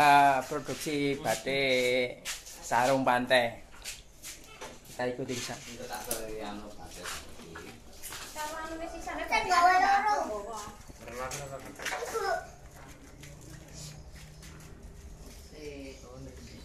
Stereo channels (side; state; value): both; identical; correlation 1.00